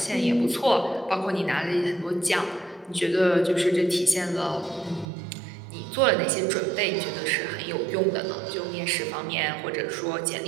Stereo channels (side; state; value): left; drops out; at 5.1 s